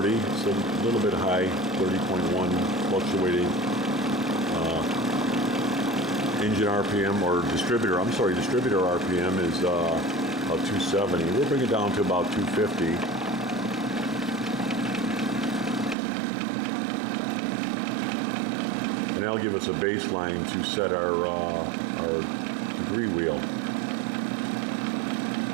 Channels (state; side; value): drops out; left; at 16.0 s